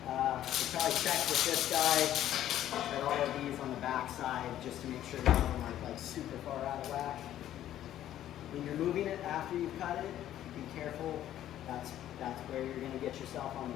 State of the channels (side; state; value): right; quieter; 12.1 dB